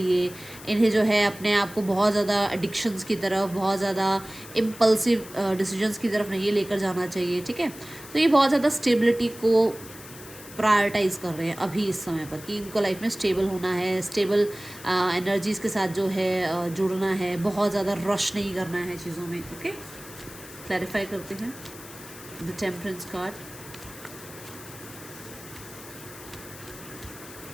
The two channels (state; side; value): noise; left; hiss, 16 dB below the sound